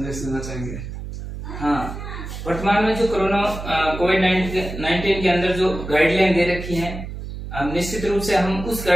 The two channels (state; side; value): noise; right; hum, 9 dB below the sound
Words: देना चाहेंगे? हाँ, वर्तमान में जो कोरोना कोविड-19 के अंदर जो गाइडलाइन दे रखी है, निश्चित रूप से हम उस